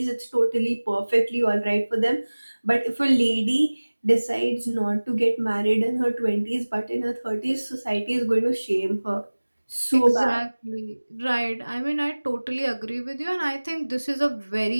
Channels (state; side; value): inverted; both; correlation -1.00